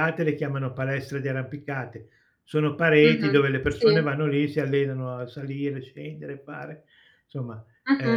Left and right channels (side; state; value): both; identical; correlation 1.00